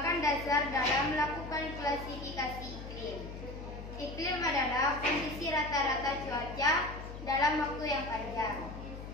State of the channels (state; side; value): noise; left; hum, 10 dB below the sound